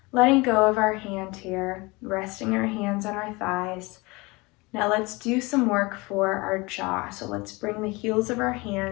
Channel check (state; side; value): quieter; right; 24.7 dB